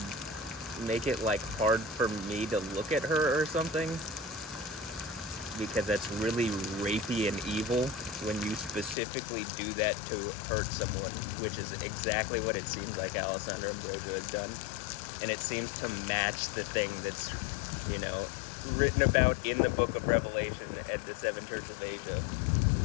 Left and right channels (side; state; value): right; drops out; at 9.0 s